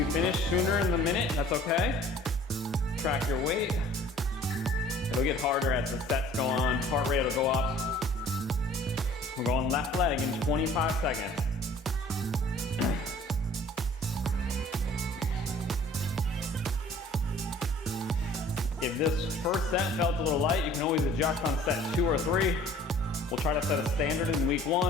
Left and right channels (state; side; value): normal; both; correlation 0.51